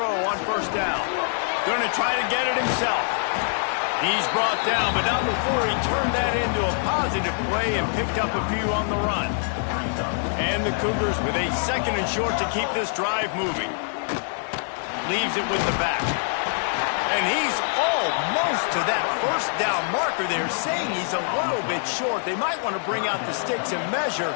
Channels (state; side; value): silent; right; 55 dB below the other